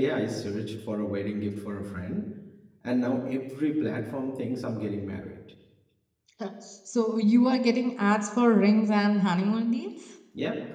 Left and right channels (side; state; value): both; identical; correlation 1.00